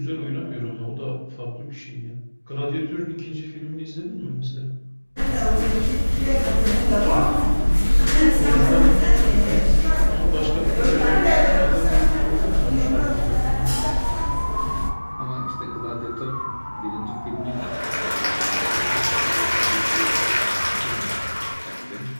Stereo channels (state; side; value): inverted; both; correlation -1.00